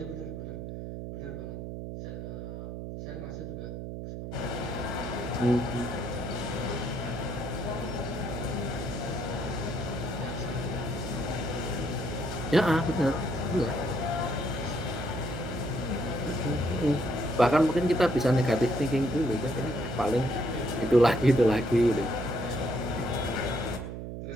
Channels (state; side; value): noise; right; hum, 7 dB below the sound